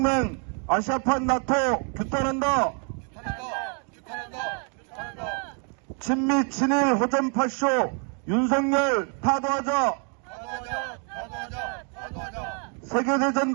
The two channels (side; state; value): left; quieter; 39.1 dB